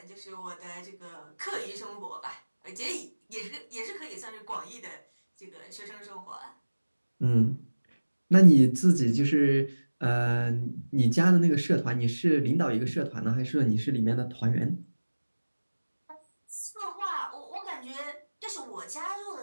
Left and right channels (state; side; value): inverted; both; correlation -1.00